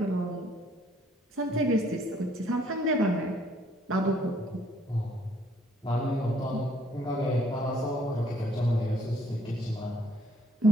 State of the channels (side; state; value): both; normal; correlation 0.64